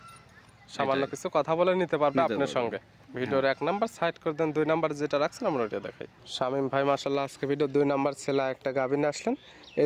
সামান্য কিছু কথা বলে নিতে পারবে আপনার সঙ্গে। ভিডিওর 1 নাম্বার সাইড করে দেন, 2 নাম্বার যেটা রাখছেন আমরা ওটা দেখাই। শামীম ভাই মাশাআল্লাহ আজকে ভিডিও 2 নাম্বার ছেলে একটা গাভী নিয়ে আসলেন।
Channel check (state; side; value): identical; both; correlation 1.00